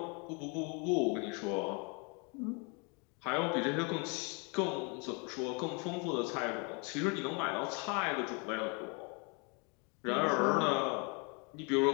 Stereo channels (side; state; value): right; quieter; 33.3 dB